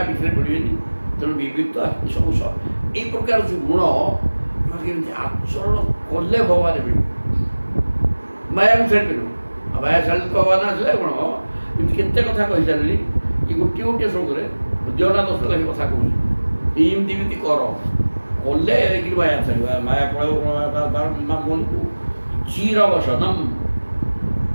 ଭିତରେ ପଡ଼ିବେନି ତେଣୁ ବିବିକ୍ତ ସବୁ ଏଇ ପ୍ରକାର ଯେଉଁ ଗୁଣ କେମିତି ଆଚରଣ କଲେ ଭଗବାନ ମିଳିବ ମାୟାକୁ ଛାଡ଼ିପାରିବ ଆଉ ମାୟା ଛାଡ଼ିଲେ ତ ଭଗବାନ ଆସିଲେ କ'ଣ ଏମିତି କେତେ କଥା କହିସାରିଲି କି ଗୋଟିଏ ଶ୍ଳୋକରେ ଜଣା 10 ଲାଖ କଥା କହୁଛି ଏମିତି କର କଲେ କି ମାୟା ଛାଡ଼ିବ ମାୟା ପଳେଇବ ମନକୁ ଚିରବସନମ୍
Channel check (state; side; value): inverted; both; correlation -1.00